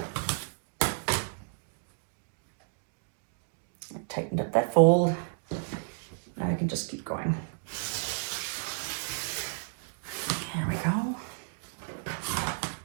I tightened up that fold. Now I can just keep going. There we go.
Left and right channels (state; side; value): silent; left; digital silence